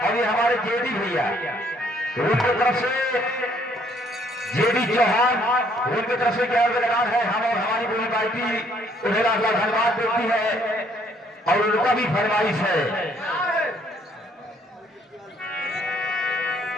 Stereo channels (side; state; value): both; normal; correlation 0.65